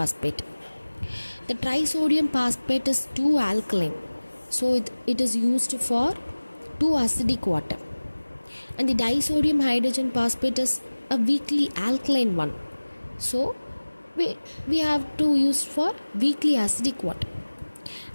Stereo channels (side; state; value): both; inverted; correlation -1.00